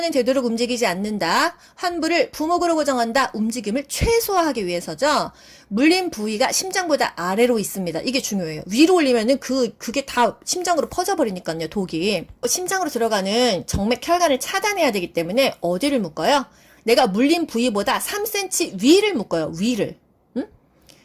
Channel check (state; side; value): identical; both; correlation 1.00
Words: 되도록 움직이지 않는다. 환부를 부목으로 고정한다. 움직임을 최소화하기 위해서죠. 물린 부위가 심장보다 아래로 있습니다. 이게 중요해요. 위로 올리면은 그게 다 심장으로 퍼져버리니까요, 독이. 심장으로 들어가는 정맥 혈관을 차단해야 되기 때문에 어디를 묶어요? 내가 물린 부위보다 3cm 위를 묶어요. 위를. 응?